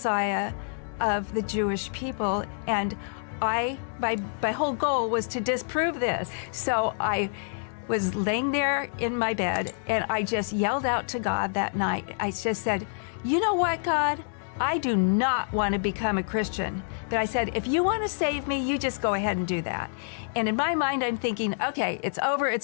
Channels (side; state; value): right; silent; 60 dB below the other